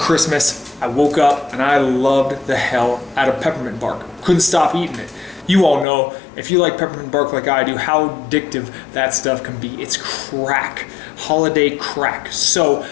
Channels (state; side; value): drops out; right; at 5.9 s